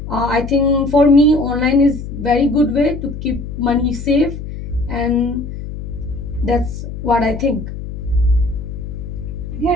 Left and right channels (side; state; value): left; noise; hum, 9 dB below the sound